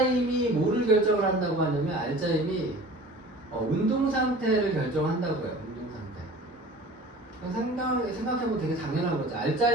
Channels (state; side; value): normal; both; correlation 0.42